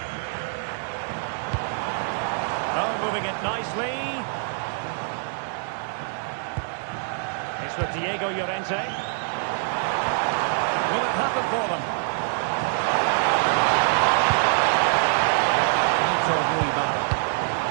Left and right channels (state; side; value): silent; left; digital silence